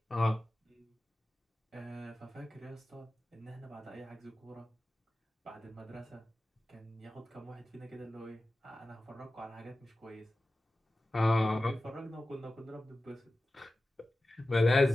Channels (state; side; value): normal; both; correlation 0.95